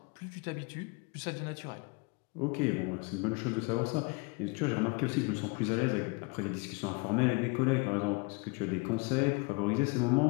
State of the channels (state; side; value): quieter; right; 28.9 dB